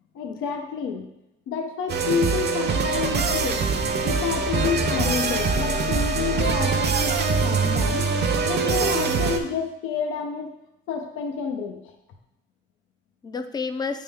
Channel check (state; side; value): normal; both; correlation 0.29